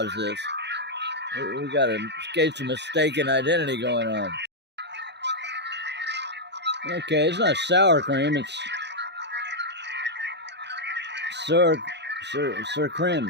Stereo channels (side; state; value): left; late; 0.50 ms